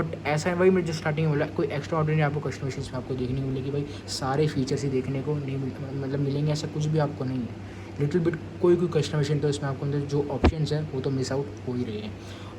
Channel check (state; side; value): identical; both; correlation 1.00